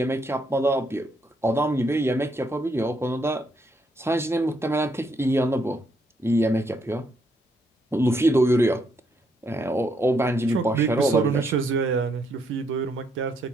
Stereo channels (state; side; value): normal; both; correlation 0.75